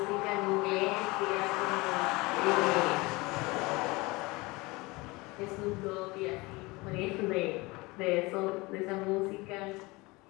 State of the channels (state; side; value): quieter; right; 23.5 dB